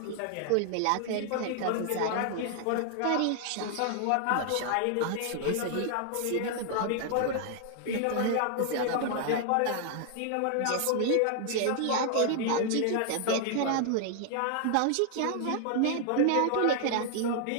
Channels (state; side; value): different; both; correlation 0.00